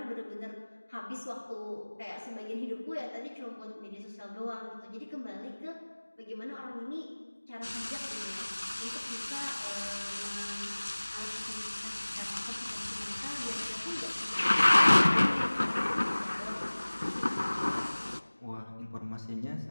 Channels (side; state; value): both; inverted; correlation -1.00